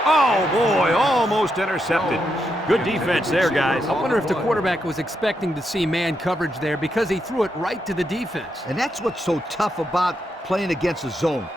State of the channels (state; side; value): normal; both; correlation 0.82